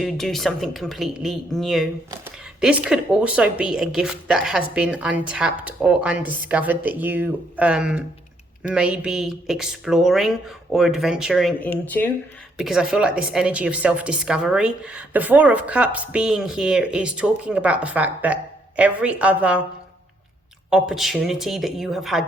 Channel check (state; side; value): normal; both; correlation 0.71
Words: do something completely new. This could also be a gift that has been untapped or undiscovered that you may be exploring or adventuring into, because I feel like this energy of self-discovery. The Four of Cups being here is talking about the fact that every other opportunity that you have